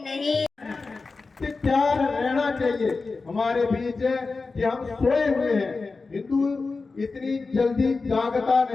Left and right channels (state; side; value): quieter; right; 4.1 dB